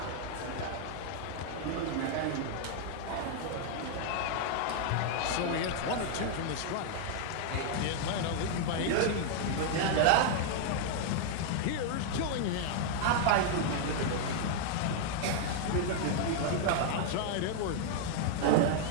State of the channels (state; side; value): different; both; correlation 0.00